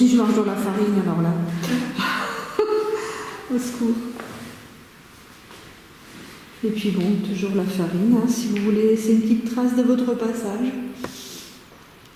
je marche dans la farine, alors là, au secours. Et puis bon, toujours la farine, hein, si vous voulez laisser une petite trace de votre passage,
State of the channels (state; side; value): identical; both; correlation 1.00